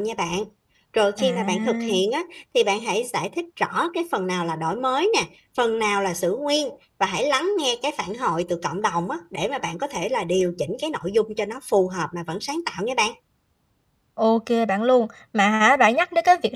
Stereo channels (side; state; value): both; identical; correlation 1.00